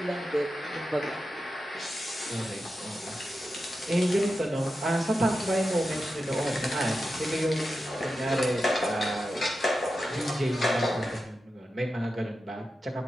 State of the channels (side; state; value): both; normal; correlation 0.90